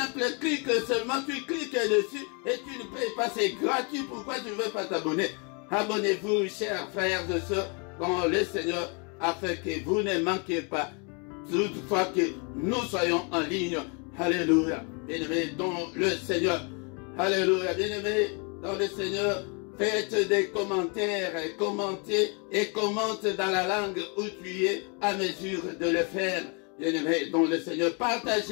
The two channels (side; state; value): right; quieter; 34.7 dB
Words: clic seulement, tu cliques dessus et tu ne payes pas, c'est gratuit. Pourquoi tu ne veux pas t'abonner? Abonnez-vous, chers frères et sœurs, dans le Seigneur, afin que vous ne manquiez pas toutefois que nous soyons en ligne. Alléluia. Bien-aimés dans le Seigneur. Alléluia. Bien-aimés dans le Seigneur. Faites des commentaires, commentez et commente dans la langue où tu es à mesure de le faire. Bien-aimés dans le Seigneur.